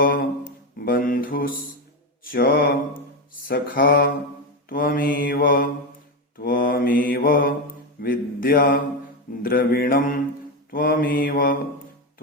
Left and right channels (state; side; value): normal; both; correlation 0.12